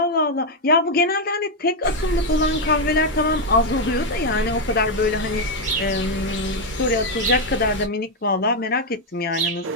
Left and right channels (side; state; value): both; normal; correlation 0.02